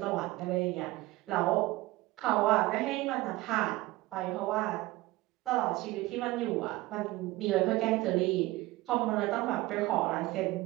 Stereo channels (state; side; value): quieter; left; 19.0 dB